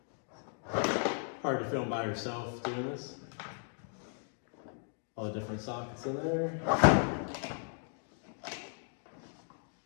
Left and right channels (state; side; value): silent; right; 54 dB below the other